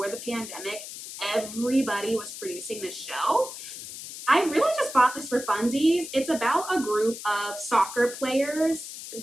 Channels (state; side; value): noise; left; hiss, 11 dB below the sound